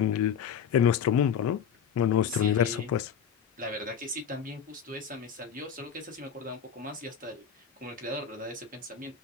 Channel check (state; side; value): quieter; right; 7.6 dB